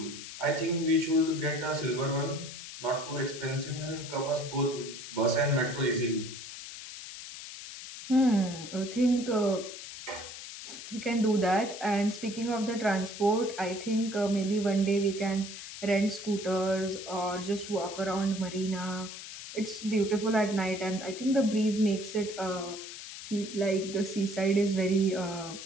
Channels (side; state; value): left; noise; hiss, 11 dB below the sound